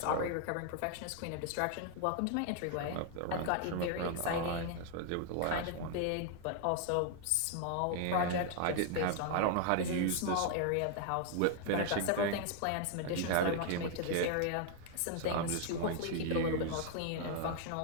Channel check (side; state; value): both; different; correlation 0.00